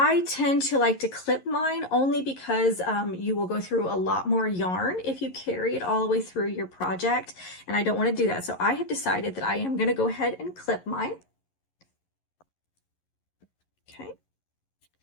tend to like to clip mine only because you will go through a lot more yarn if you carry it all the way through your project, and I don't want to do that. So I have decided that I am going to go ahead and clip mine. Okay.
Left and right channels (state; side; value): late; right; 11 ms